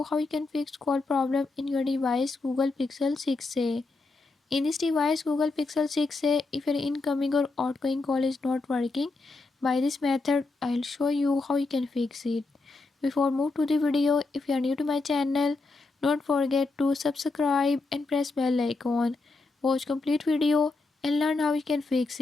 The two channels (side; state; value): right; quieter; 3.5 dB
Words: how you can fix call problem in your device Google Pixel 6a. In this device Google Pixel 6a, if your incoming or outgoing call is not working, by this method I'll show you how you can fix it. Before move to the video, if you are new to my channel, don't forget to subscribe and press bell icon. Watch complete video and learn how you can fix